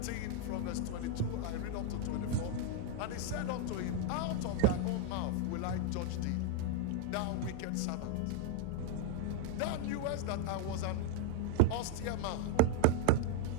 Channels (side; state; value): both; different; correlation 0.00